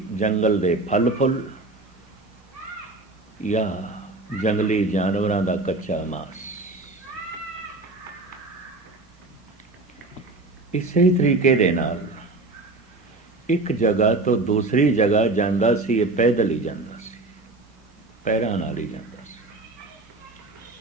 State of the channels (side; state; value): left; quieter; 3.1 dB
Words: ਜੰਗਲ ਦੇ ਫਲ ਫੁੱਲ ਜਾਂ ਜੰਗਲੀ ਜਾਨਵਰਾਂ ਦਾ ਕੱਚਾ ਮਾਸ। ਇਸੇ ਤਰੀਕੇ ਦੇ ਨਾਲ ਇੱਕ ਜਗ੍ਹਾ ਤੋਂ ਦੂਸਰੀ ਜਗ੍ਹਾ ਜਾਂਦਾ ਸੀ, ਇਹ ਪੈਦਲ ਹੀ ਜਾਂਦਾ ਸੀ, ਪੈਰਾਂ ਨਾਲ ਹੀ ਜਾਂਦਾ ਸੀ।